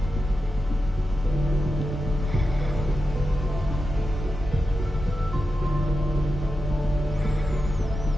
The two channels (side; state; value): both; normal; correlation 0.90